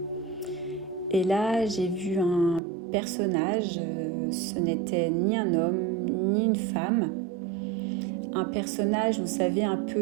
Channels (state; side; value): drops out; left; at 2.6 s